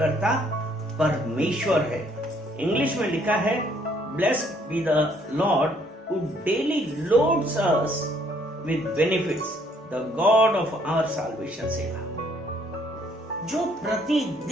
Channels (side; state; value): both; normal; correlation 0.65